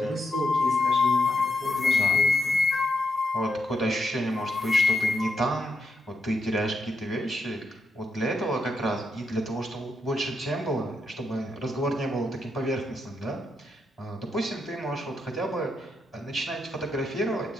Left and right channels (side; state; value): both; normal; correlation 0.81